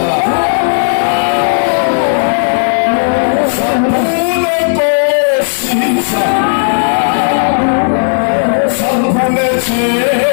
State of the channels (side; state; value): right; silent; digital silence